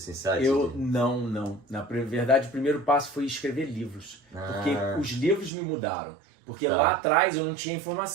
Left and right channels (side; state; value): left; drops out; at 5.5 s